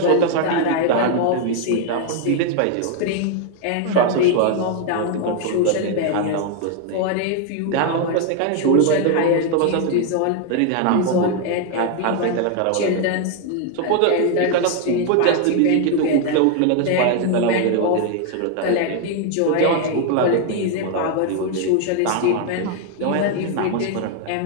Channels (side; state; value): both; different; correlation 0.00